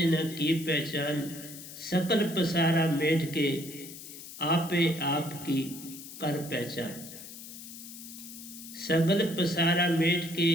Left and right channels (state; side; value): noise; left; hiss, 13 dB below the sound